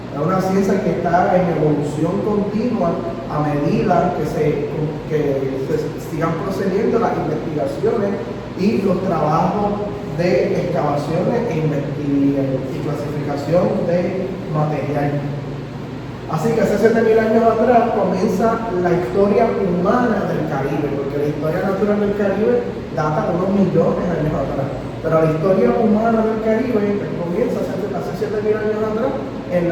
es una ciencia que está en evolución continua a medida que se sigan procediendo las investigaciones y los trabajos de excavaciones y clasificación de material. Así que hace 7.000 años atrás comienza la historia humana del Caribe, porque la historia natural del Caribe data de unos millones de años atrás. Pero la historia humana del Caribe comienza hace 7.000 años atrás en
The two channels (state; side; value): identical; both; correlation 1.00